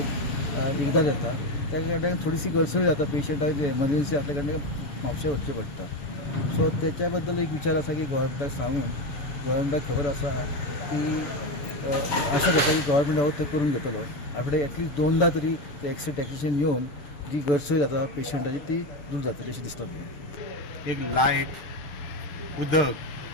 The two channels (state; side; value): late; right; 6.9 ms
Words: एकदां येता। त्या कारणान थोडीशी गरसोय जाता पेशंटाक जे एमर्जन्सी आसल्या कारणान म्हापशें वचचें पडटा। सो त्याच्या बद्दल एक विचार आसा की गोव्हर्मेंटाक सांगून गोव्हर्मेंटाक खबर आसा की आशा करता की गोव्हर्मेंट हो ते करून घेतलो। आठवड्याक एटलीस्ट 2दा तरी ते एक्सरे टेक्निशियन येवन जी गरसोय जाता पेशंटाची ती दूर जातली अशें दिसता म्हाका। एक लायट, उदक,